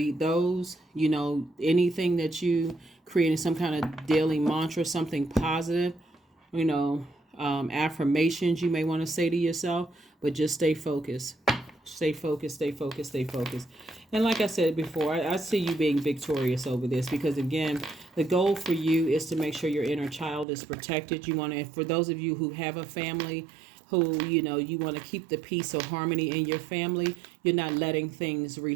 those. Anything that you create, some kind of daily mantra, something positive, affirmations you may want to say to yourself, but just stay focused. Stay focused, stay focused, stay focused. And like I said before, I see you being victorious over this, because again, the goal for you is to make sure your inner child is protected. You want to, for those of you who have a family, who, you want to keep the peace or harmony in your family, you're not letting things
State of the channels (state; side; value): drops out; left; at 20.5 s